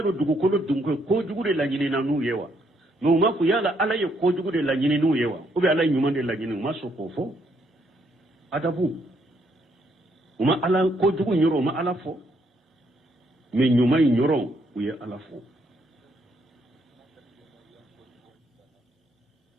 do dugu ko dunko ko jugu de la nyini na nu yewa no ma ku yala ala ye ko jugu de la nyini nu yewa o be ala nyuma de la nyini maso ko fo adabu uma ala ko jugu nyoro ma ala fo me nyuma nyoro uye ala fo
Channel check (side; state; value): both; normal; correlation 0.72